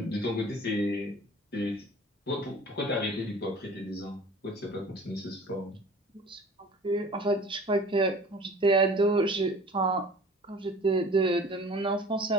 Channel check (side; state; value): both; normal; correlation 0.45